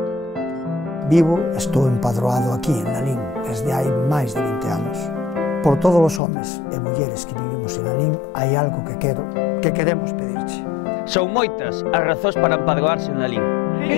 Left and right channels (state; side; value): drops out; right; at 6.2 s